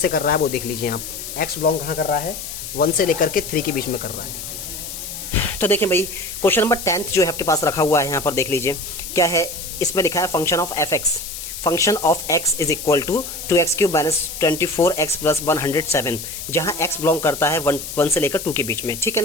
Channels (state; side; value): noise; left; hiss, 8 dB below the sound